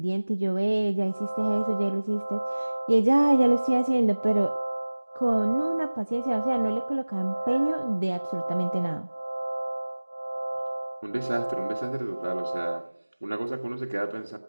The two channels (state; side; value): inverted; both; correlation -1.00